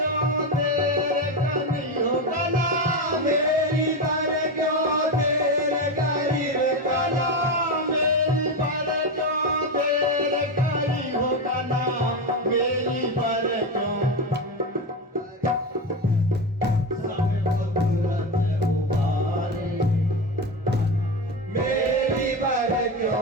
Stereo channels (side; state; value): both; normal; correlation 0.16